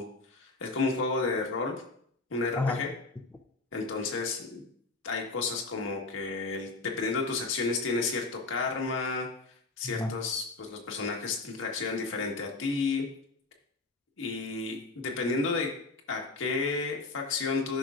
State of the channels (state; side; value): quieter; right; 3.5 dB